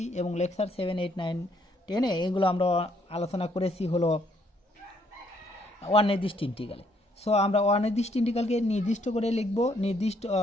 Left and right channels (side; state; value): both; normal; correlation 0.69